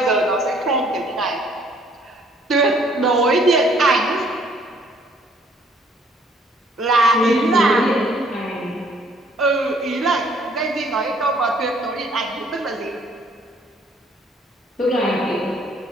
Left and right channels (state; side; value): normal; both; correlation 0.61